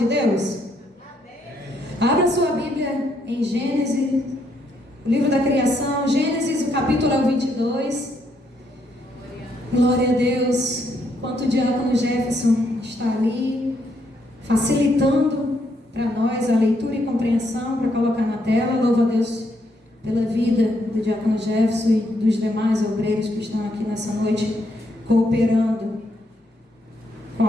Deus? Abra sua Bíblia em Gênesis, o livro da criação, Gênesis, o capítulo 22. Glória a Deus. Enquanto o diácono Jefferson está ali, facilitando para nós a leitura e compreensão para colocar na tela, louva a Deus pela vida do diácono Jefferson e dos demais obreiros que estão aqui nessa noite, cooperando com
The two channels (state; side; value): normal; both; correlation 0.75